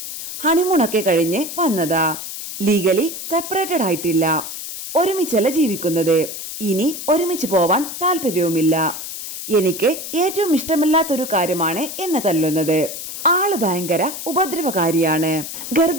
ഹണിമൂണൊക്കെ കഴിഞ്ഞ് വന്നതാ. ലീഗലി സെപ്പറേറ്റഡ് ആയിട്ടില്ല. ഒരുമിച്ചല്ല ജീവിക്കുന്നത്. ഇനി ഒരുമിച്ച് പോവാൻ താല്പര്യവുമില്ല. എനിക്ക് ഏറ്റവും ഇഷ്ടമില്ലാത്തൊരു കാര്യമാണ് എന്നെ തല്ലുന്നത്. ആള് ഭയങ്കര ഉപദ്രവകാരിയാണ്.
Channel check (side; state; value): left; noise; hiss, 8 dB below the sound